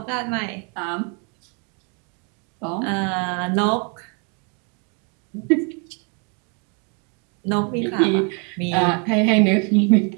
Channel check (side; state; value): left; quieter; 36.6 dB